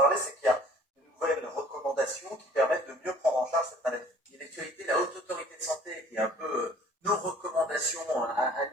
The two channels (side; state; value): both; normal; correlation 0.52